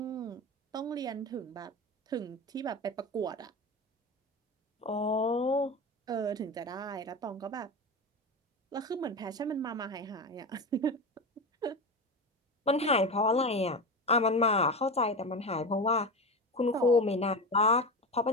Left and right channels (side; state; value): both; normal; correlation 0.22